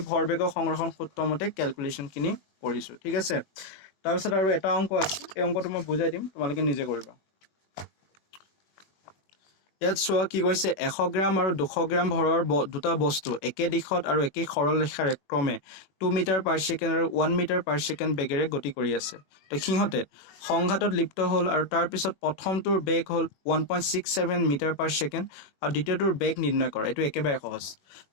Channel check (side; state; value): right; late; 21 ms